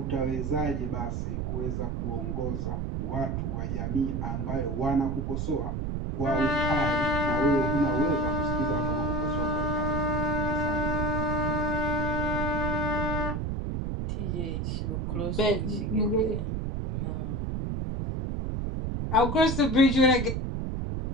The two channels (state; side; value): noise; right; rumble, 1 dB below the sound